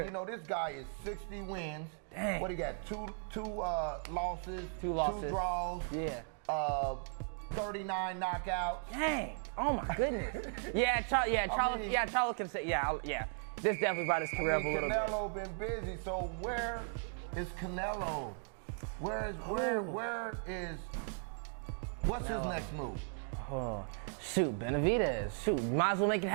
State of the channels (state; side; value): silent; left; 53 dB below the other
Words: this guy is 60 wins. Dang. What he got? Two losses, 2 draws. Yeah. 39 knockouts. Dang. Oh my goodness. Charlo can say, This definitely brought his career. Canelo been busy. So where is Canelo? What's his next move? Shoot, Benavidez. Shoot, might as well make it